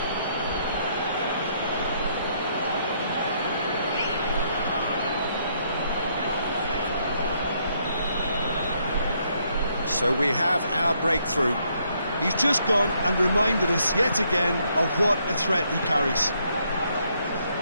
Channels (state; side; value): inverted; both; correlation -0.72